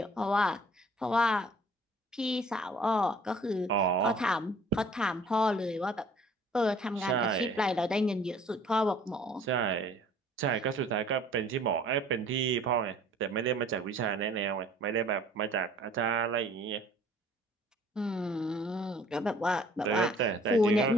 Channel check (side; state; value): both; normal; correlation 0.53